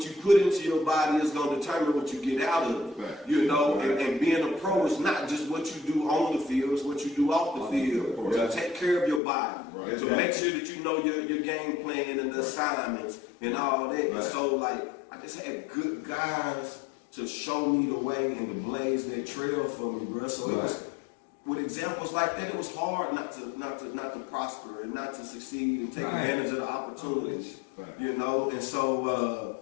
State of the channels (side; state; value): right; drops out; at 9.2 s